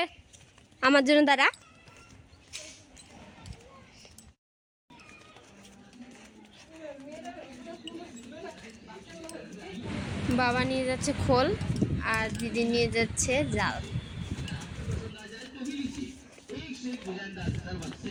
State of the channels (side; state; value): both; identical; correlation 1.00